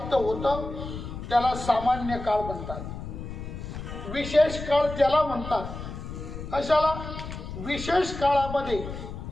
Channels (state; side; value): noise; left; rumble, 9 dB below the sound